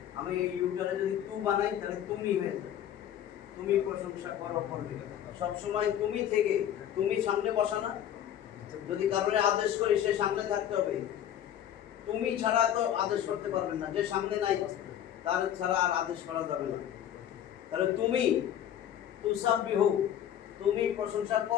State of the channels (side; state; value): right; quieter; 10.6 dB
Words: আমি ইউটারে যদি তু বানাই তাহলে তুমি হয়ে যাবে, তুমি প্রশংসা করবে। সবসময় তুমি থেকে, তুমি সামনে বসা না, যদি কারণে আদেশ করি সে সামনে থাকতে হবে। তুমি ছাড়া তো আদেশ করতে পারবেন না, যে সামনে নাই তার ছাড়া আর আদেশ করা যাবে না। তাহলে তুমি তুসাব্বিহু, তুমি প্রশংসা